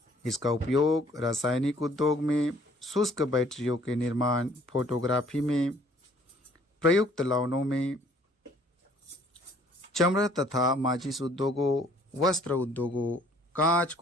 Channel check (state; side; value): normal; both; correlation 0.58